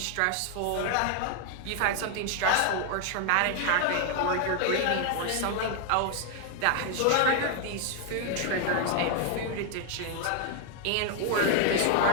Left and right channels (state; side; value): different; both; correlation 0.00